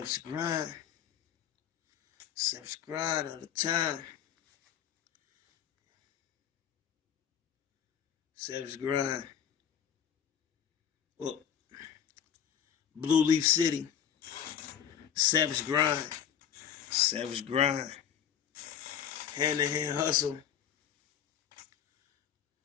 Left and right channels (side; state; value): right; quieter; 9.0 dB